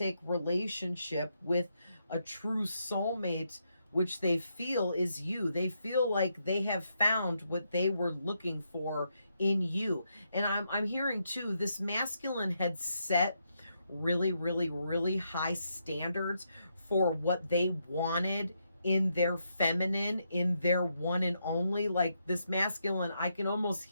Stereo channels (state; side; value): inverted; both; correlation -0.80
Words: relationship with a true soulmate, which they feel is you. They feel like they have found what they were looking for in you. And I'm hearing too, this masculine had set really high standards for what they wanted in their feminine, in their one and only. Like, this masculine, I can almost